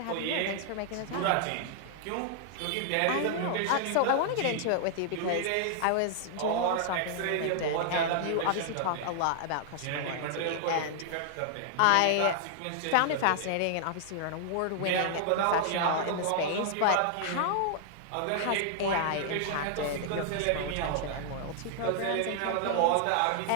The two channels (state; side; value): different; both; correlation -0.01